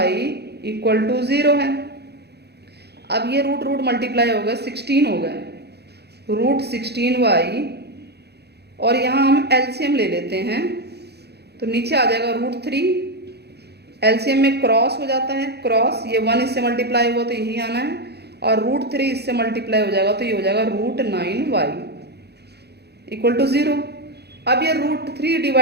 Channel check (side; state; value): left; late; 0.48 ms